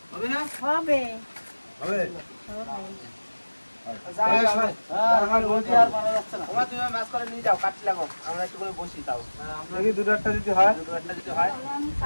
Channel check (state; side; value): inverted; both; correlation -1.00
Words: হবে না? হবে হবে? হ্যাঁ রোজি আর পারা যাচ্ছে না। তোমার তুমি মাছ করে নিয়ে যাও, কাটছি লাগো, আমরা একটু করে বসি তাও দেখি দুটো একটা যদি হয়। দুটো একটা যদি হয়। তাহলে আমি